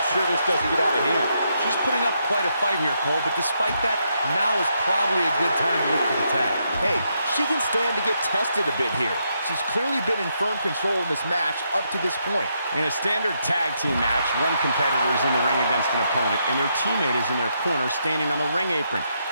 sure this doesn't get out of hand. She's putting up quite a fight here, Cole, but despite that, now is probably a good time to look for the tag. Hey, she can stand to get tested a bit here. She's clearly been in firm control in this match up to this point. In a standard tag team match, one competitor is in the ring against an opponent, and their teammate is in their corner standing on the ring apron.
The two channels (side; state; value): both; inverted; correlation -0.79